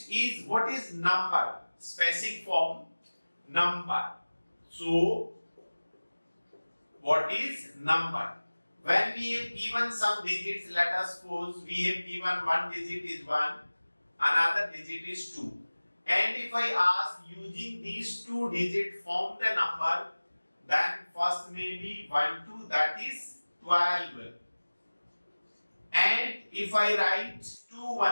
is, what is number? Specific form, number. So what is number? When we have given some digits, let us suppose we have given one digit is 1, another digit is 2. And if I ask using these two digits form the number, then first may be 1, 2, that is 12. And if I write 2,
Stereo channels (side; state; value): both; inverted; correlation -1.00